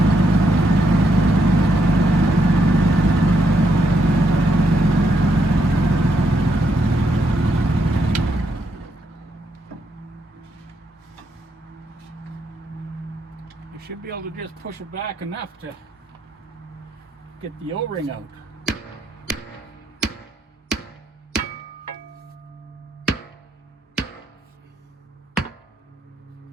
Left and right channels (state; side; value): normal; both; correlation 0.77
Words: Should be able to just push it back enough to get the O-ring out.